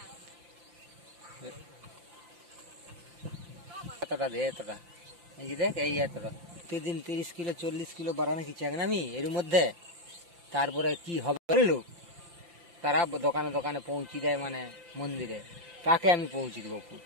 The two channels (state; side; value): late; left; 5.8 ms